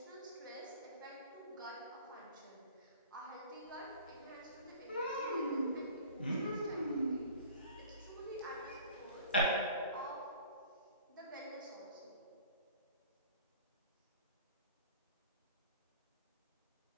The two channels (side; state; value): both; inverted; correlation -0.45